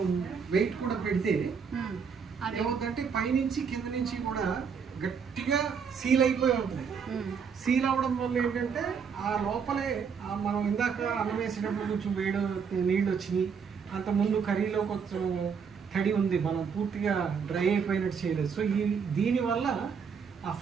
వెయిట్ కూడా పెడితే ఏమవుతుందంటే పైనుంచి కింద నుంచి కూడా గట్టిగా సీల్ అయిపోయి ఉంటుంది. సీల్ అవ్వడం వల్ల ఏంటంటే ఆ లోపలే మనం ఇందాక అన్నం వేసేటప్పుడు కొంచెం నీళ్ళు వచ్చినాయి. అంత ముందు కర్రీలో కొంచెం తడి ఉంది, మనం పూర్తిగా డ్రై అయిపోయినట్టు చేయలేదు. సో దీనివల్ల ఆ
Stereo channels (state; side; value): quieter; left; 6.3 dB